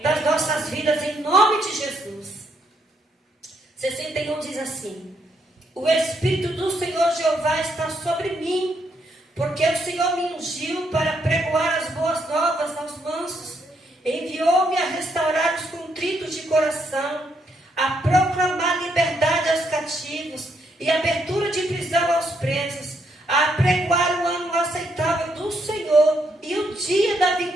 das nossas vidas, em nome de Jesus. 61 diz assim: o Espírito do Senhor Jeová está sobre mim, porque o Senhor me ungiu para pregoar as boas novas aos mansos, enviou-me a restaurar os contritos de coração, a proclamar liberdade aos cativos e abertura de prisão aos presos, a pregoar o ano aceitável do Senhor e o dia da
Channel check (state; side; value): normal; both; correlation 0.75